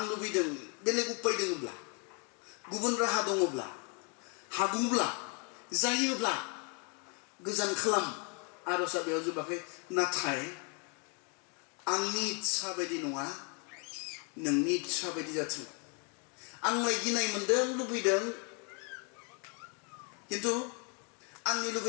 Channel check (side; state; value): right; quieter; 36.2 dB